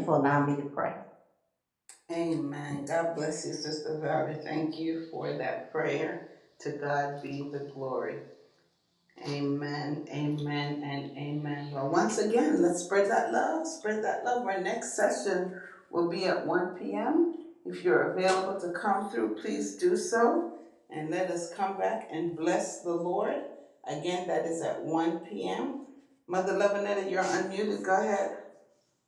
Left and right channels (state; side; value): identical; both; correlation 1.00